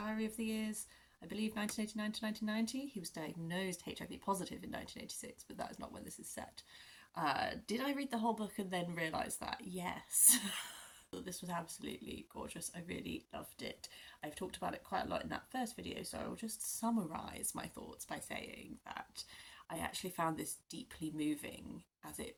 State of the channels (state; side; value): identical; both; correlation 1.00